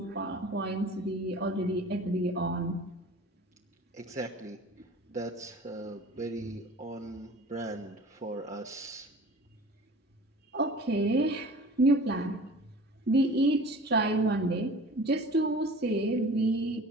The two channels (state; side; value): normal; both; correlation 0.42